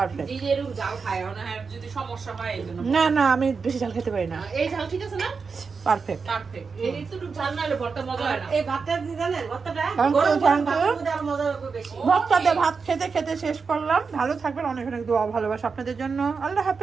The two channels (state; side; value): quieter; left; 5.1 dB